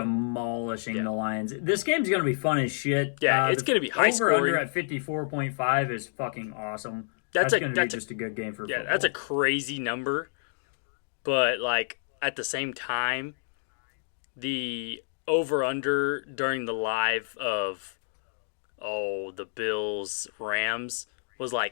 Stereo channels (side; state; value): right; silent; digital silence